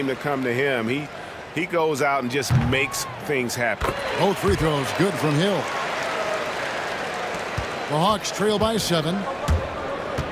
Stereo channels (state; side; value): identical; both; correlation 1.00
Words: to come to him. He goes out and just makes things happen. Both free throws good from Hill. The Hawks trail by 7.